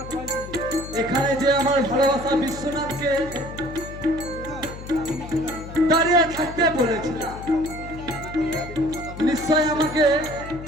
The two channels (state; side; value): noise; left; hum, 12 dB below the sound